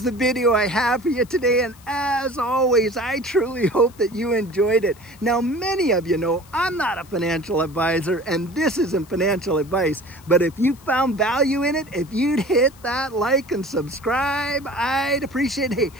the video I have for you today, and as always, I truly hope that you enjoyed it. Now, many of you know I'm not a financial advisor, and this isn't financial advice, but if you found value in it, if you'd hit that like and subscribe, I'd appreciate it. Hey,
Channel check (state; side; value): noise; left; hiss, 25 dB below the sound